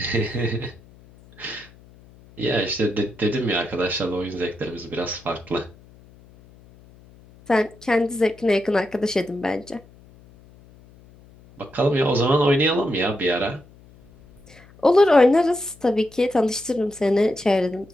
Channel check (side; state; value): left; noise; hum, 25 dB below the sound